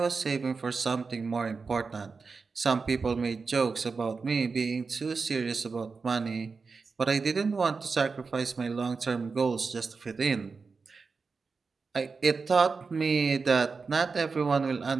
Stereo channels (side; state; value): left; quieter; 4.7 dB